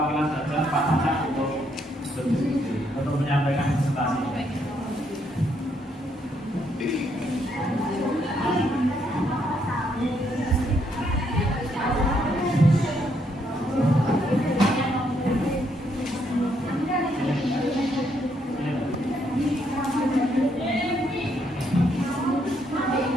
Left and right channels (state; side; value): normal; both; correlation 0.73